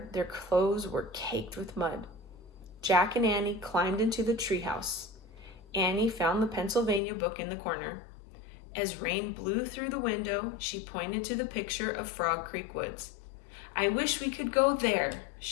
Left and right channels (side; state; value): right; drops out; at 7.0 s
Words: their clothes were caked with mud. Jack and Annie climbed into the treehouse. Annie found the Pennsylvania book in the corner. As rain blew through the window, she pointed to the picture of Frog Creek Woods. I wish we could go there,